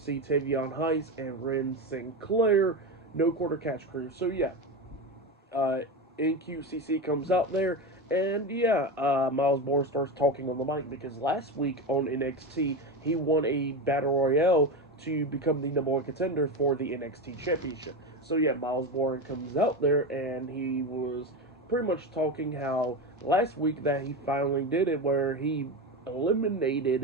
Tavion Heiss, and Ren Sinclair. No quarter catch crew. So yeah, uh, NQCC comes out there, and yeah, Myles Borne starts talking on the mic because last week on NXT he won a battle royale to become the number one contender for the NXT championship. So yeah, Myles Borne comes out there and he was pretty much talking how last week that he finally did it, where he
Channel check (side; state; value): both; normal; correlation 0.19